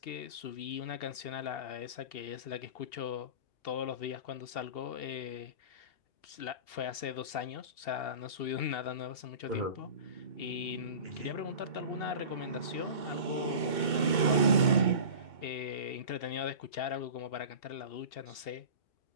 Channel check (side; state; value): right; late; 2.2 ms